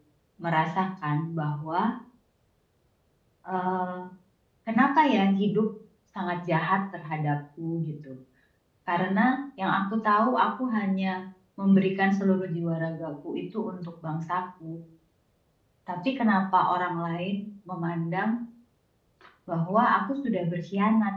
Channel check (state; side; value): identical; both; correlation 1.00